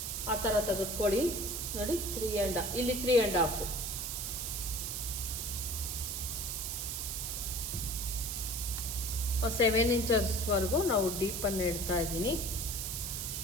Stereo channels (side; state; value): right; noise; hiss, 3 dB below the sound